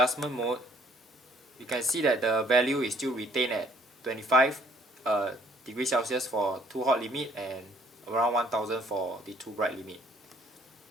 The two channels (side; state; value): both; normal; correlation 0.62